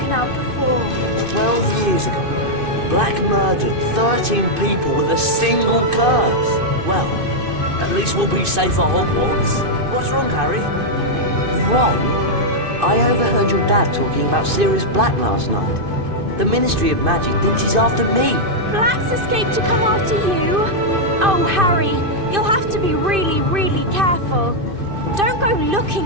out before. 12 years ago, Black murdered 13 people with a single curse. Well, at least we'll be safe at Hogwarts. What's wrong, Harry? Ron? I overheard your dad talking about Sirius Black last night. The Ministry of Magic thinks he's after me. Black's escaped to come after you? Oh, Harry, you'll have to be really, really careful. Don't go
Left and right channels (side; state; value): left; late; 2.5 ms